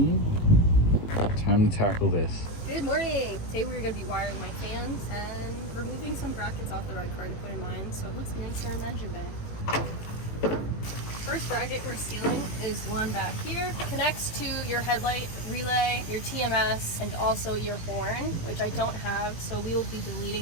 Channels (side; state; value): right; late; 18 ms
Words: Time to tackle this. Good morning! Today we're going to be wiring my fans and removing some brackets off the ride car to put in mine so it looks nicer in the engine bay. First bracket we're stealing is one back here. It connects to your headlight relay, your TMS, and also your horn, which I don't have, so we will be